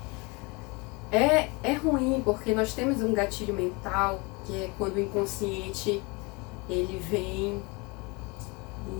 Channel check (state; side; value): quieter; right; 27.5 dB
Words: É ruim porque nós temos um gatilho mental, que é quando o inconsciente ele vem